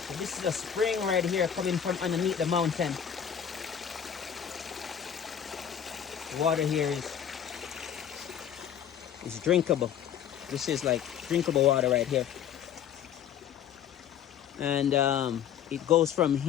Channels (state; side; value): quieter; right; 8.9 dB